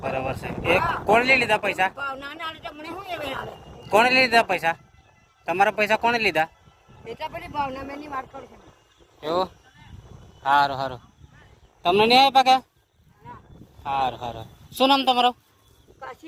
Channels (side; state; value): both; identical; correlation 1.00